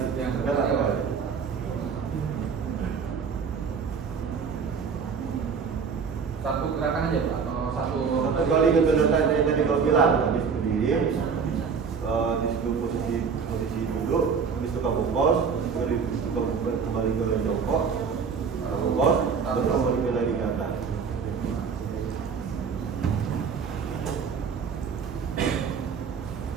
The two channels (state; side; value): quieter; left; 6.0 dB